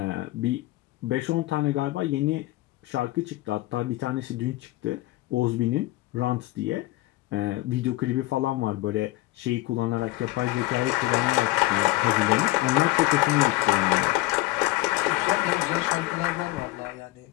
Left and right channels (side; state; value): right; quieter; 18.6 dB